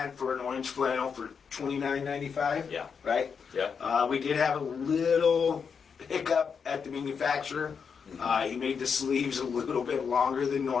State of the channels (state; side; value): quieter; right; 6.3 dB